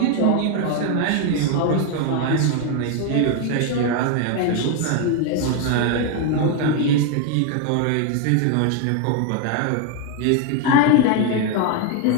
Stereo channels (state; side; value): different; both; correlation 0.01